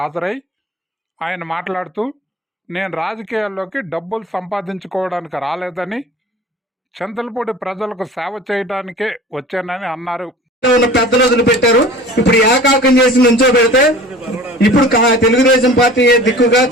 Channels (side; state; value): both; normal; correlation 0.42